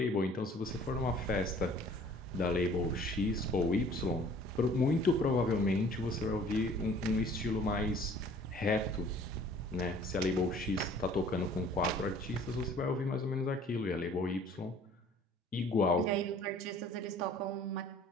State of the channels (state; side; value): normal; both; correlation 0.52